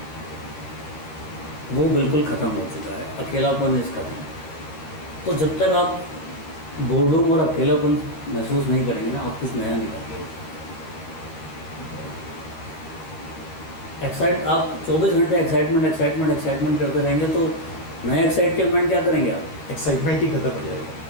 वो बिल्कुल ख़त्म हो चुका है। अकेलापन इस खत्म। तो जब तक आप बोर्डरूम और अकेलापन महसूस नहीं करेंगे ना, आप कुछ नया नहीं करेंगे। आप 24 घंटे एक्साइटमेंट करते रहेंगे तो नया एक्साइटमेंट क्या करेंगे आप? एक्साइटमेंट ही खत्म हो जाएगा।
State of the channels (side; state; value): right; late; 12 ms